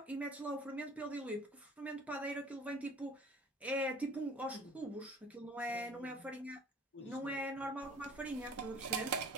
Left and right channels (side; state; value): both; normal; correlation 0.48